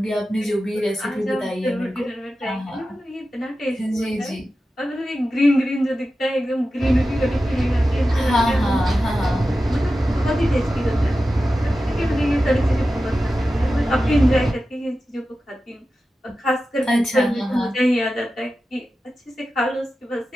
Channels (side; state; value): both; normal; correlation 0.93